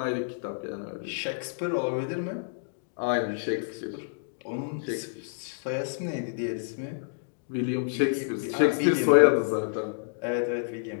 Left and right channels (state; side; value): silent; right; digital silence